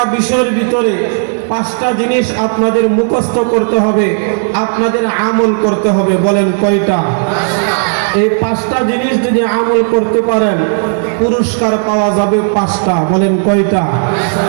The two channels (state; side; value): silent; left; digital silence